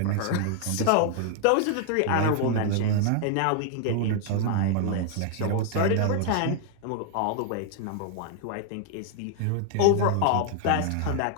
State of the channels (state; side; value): different; both; correlation 0.00